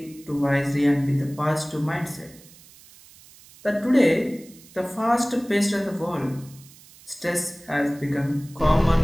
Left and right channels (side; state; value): right; noise; hiss, 23 dB below the sound